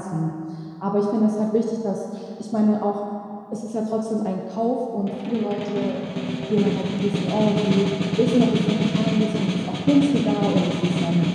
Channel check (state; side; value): identical; both; correlation 1.00